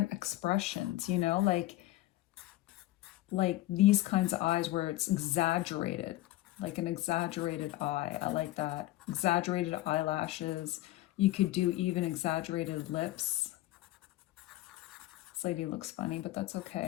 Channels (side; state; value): right; quieter; 16.4 dB